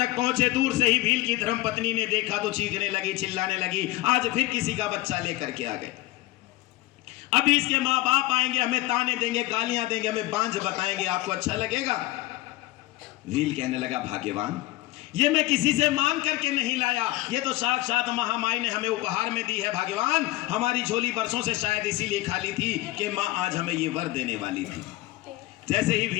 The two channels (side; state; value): right; quieter; 18.4 dB